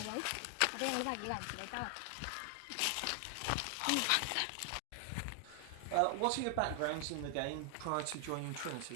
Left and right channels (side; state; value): both; different; correlation 0.00